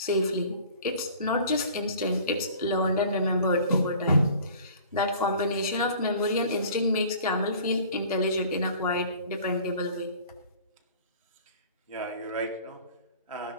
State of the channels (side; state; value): both; inverted; correlation -0.47